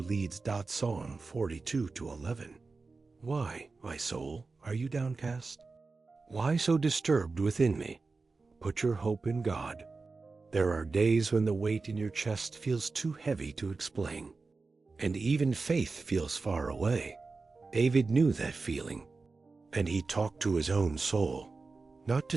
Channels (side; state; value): left; quieter; 4.0 dB